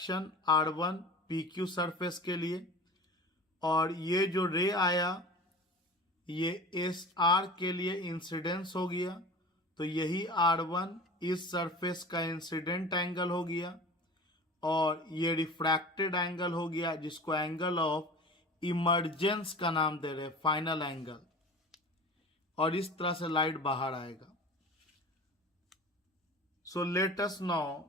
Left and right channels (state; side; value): normal; both; correlation 0.37